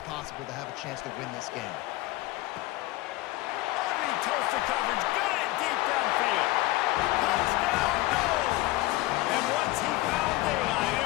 possible to have a chance to win this game. Underneath Tulsa coverage, got it deep downfield. Touchdown, no! And once he found daylight,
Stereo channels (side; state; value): right; quieter; 18.7 dB